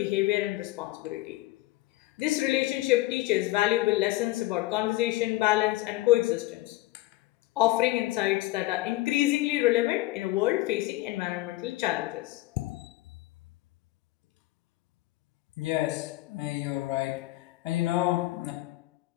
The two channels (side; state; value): right; quieter; 18.3 dB